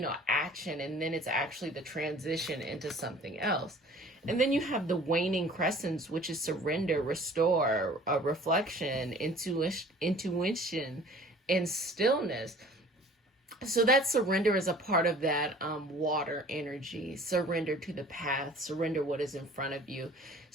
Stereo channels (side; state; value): both; normal; correlation 0.49